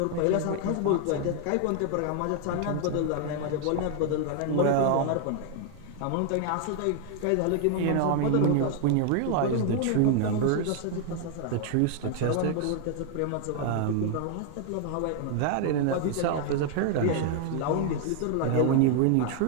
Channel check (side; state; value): both; different; correlation 0.00